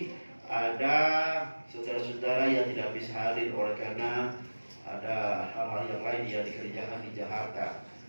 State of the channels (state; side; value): inverted; both; correlation -1.00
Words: ada saudara-saudara yang tidak bisa hadir oleh karena ada hal-hal yang lain yang dikerjakan di Jakarta.